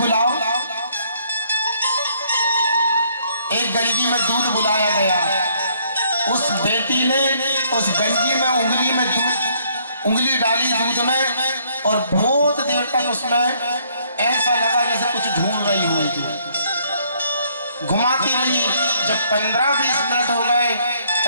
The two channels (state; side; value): inverted; both; correlation -0.66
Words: एक गंजी में दूध बुलाया गया। उस बेटी ने उस गंजी में उंगली डाली दूध में और बहुत देर तक उसमें ऐसा लगा जैसे कुछ ढूंढ रही होगी। घुमाती रही। जब 15-20 मिनट हो गए